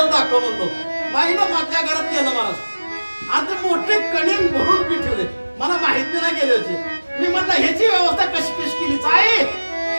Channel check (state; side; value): inverted; both; correlation -1.00